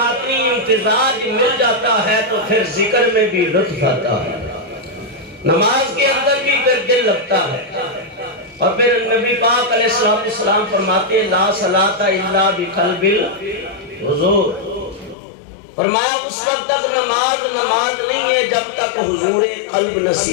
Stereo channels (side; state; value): right; drops out; at 15.2 s